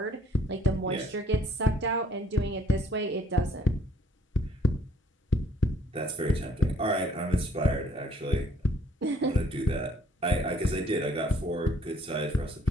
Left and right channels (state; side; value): normal; both; correlation 0.61